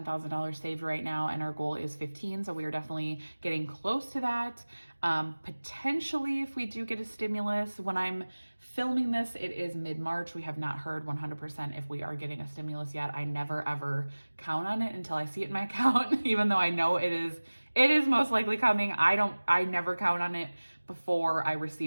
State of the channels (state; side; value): inverted; both; correlation -1.00